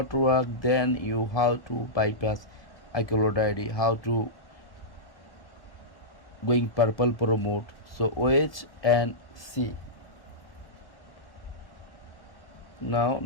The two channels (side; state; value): right; late; 1.1 ms